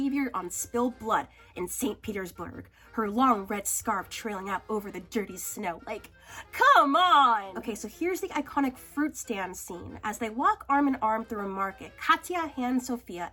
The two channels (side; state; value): both; identical; correlation 1.00